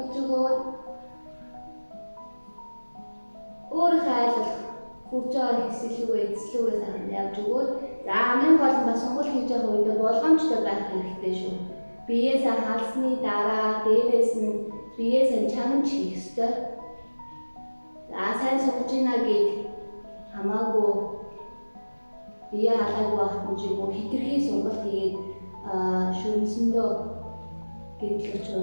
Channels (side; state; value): both; inverted; correlation -1.00